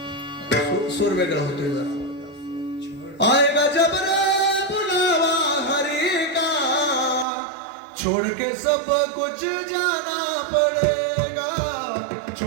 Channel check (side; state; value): left; drops out; at 7.2 s